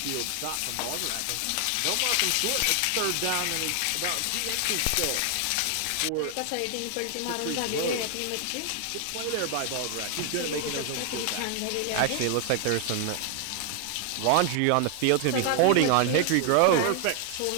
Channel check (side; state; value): both; different; correlation 0.00